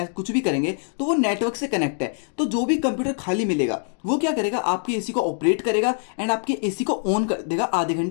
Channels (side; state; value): right; silent; 56 dB below the other